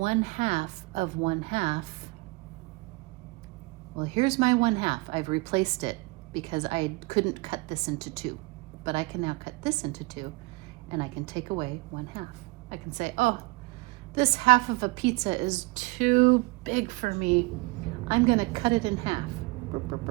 of 1/2, well, here's my 1/2. I've replaced it because I couldn't cut this into 2. But I can now cut this into 2, and I can take away 1/2. I can say, oh, this half of a pizza is too big for me. I'm going to cut it in half.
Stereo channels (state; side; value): quieter; left; 25.4 dB